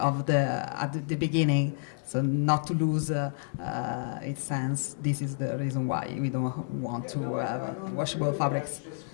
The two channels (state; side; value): silent; right; digital silence